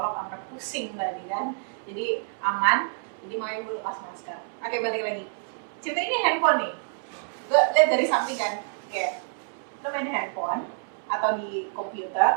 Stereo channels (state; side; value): silent; left; 60 dB below the other